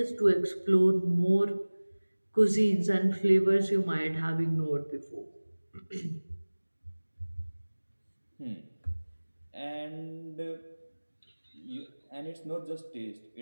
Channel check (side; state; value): both; inverted; correlation -1.00